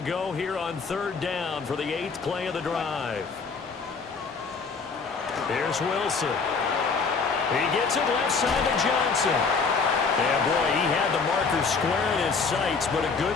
here on 3rd down for the 8th play of the drive. Here's Wilson. He gets it left side to Johnson. Yeah, boy, he had the marker square in his sights, but a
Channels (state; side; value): quieter; right; 4.9 dB